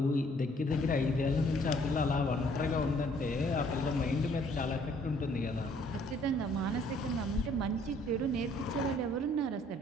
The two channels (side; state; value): both; normal; correlation 0.61